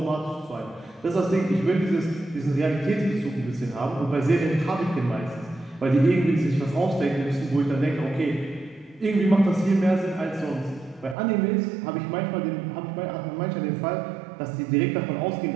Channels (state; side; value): drops out; left; at 11.2 s